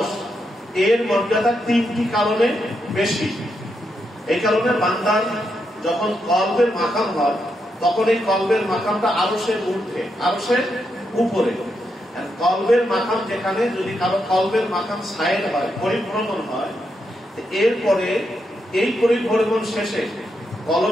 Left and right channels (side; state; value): both; normal; correlation 0.82